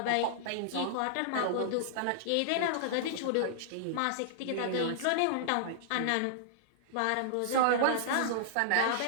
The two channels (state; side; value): different; both; correlation -0.01